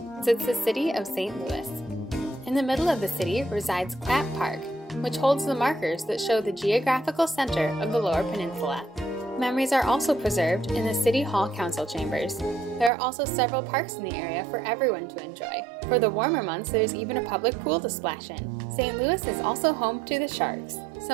sits the city of St. Louis. In the middle of the city resides Clapp Park, which holds the markers that show the geographical center of the Lower Peninsula. Memories are also preserved in the City Hall Council chambers. There are also several parks in the area for everyone to enjoy. For the warmer months, there's even a public pool to splash in. St. Louis is also home to the Sharks.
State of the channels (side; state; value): left; drops out; at 12.9 s